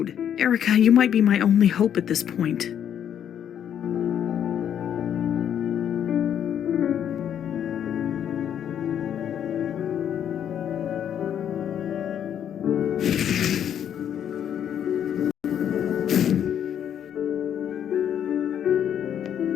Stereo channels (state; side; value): quieter; right; 9.4 dB